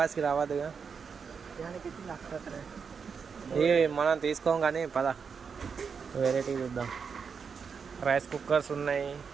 రావద్దుగా. ఇవి మనం తీసుకోం కానీ పద వెరైటీ చూద్దాం. రైస్ కుక్కర్స్ ఉన్నాయి,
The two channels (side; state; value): left; quieter; 6.0 dB